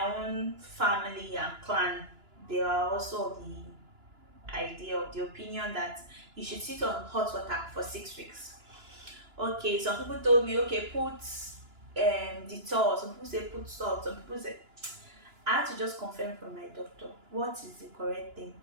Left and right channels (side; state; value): left; late; 2.9 ms